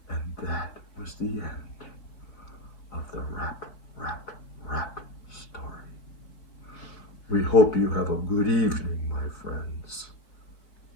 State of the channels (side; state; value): right; late; 4.0 ms